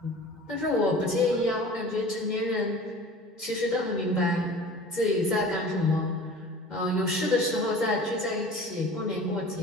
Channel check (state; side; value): normal; both; correlation 0.41